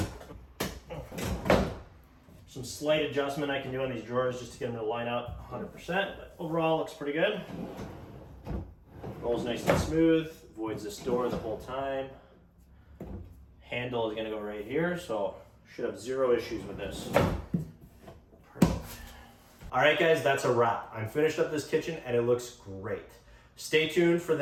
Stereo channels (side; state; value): both; identical; correlation 1.00